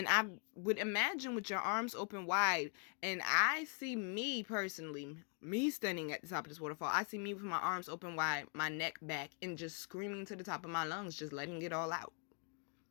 I would imagine with your arms open wide, and I see me personally, me standing at the top of this waterfall. I see me with my arms open wide, my neck back, and just screaming to the top of my lungs, just letting it all out.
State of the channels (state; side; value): quieter; right; 39.6 dB